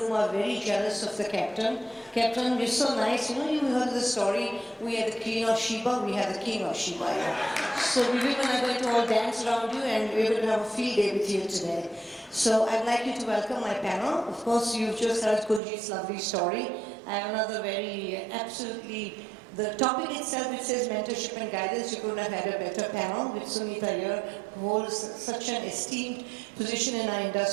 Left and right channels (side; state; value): left; drops out; at 15.6 s